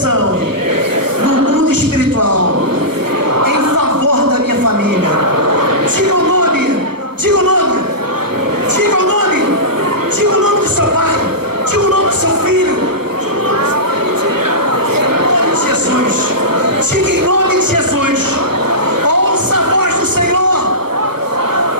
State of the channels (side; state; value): left; late; 1.1 ms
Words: no mundo espiritual em favor da minha família. Diga o nome, diga o nome, diga o nome, diga o nome do seu pai, diga o nome do seu filho. Em nome de Jesus, diga em nome de Jesus, ouça a voz do Senhor,